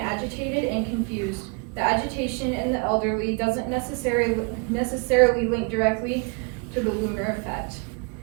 agitated and confused. The agitation in the elderly doesn't necessarily link directly to the lunar effect.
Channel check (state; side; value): quieter; left; 34.3 dB